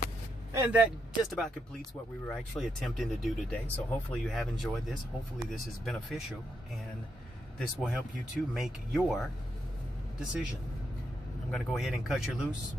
And that just about completes what we were actually attempting to do today. So hopefully you have enjoyed this. Hopefully this is beneficial, and this will help you to make your decision. I'm going to go ahead and cut you loose.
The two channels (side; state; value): both; normal; correlation 0.81